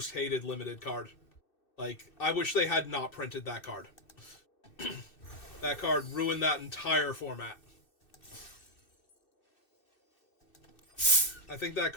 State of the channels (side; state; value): right; late; 2.6 ms